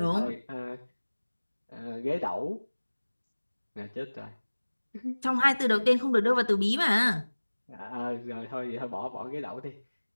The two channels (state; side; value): inverted; both; correlation -1.00